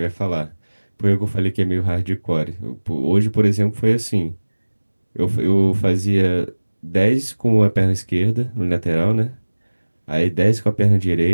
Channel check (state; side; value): inverted; both; correlation -1.00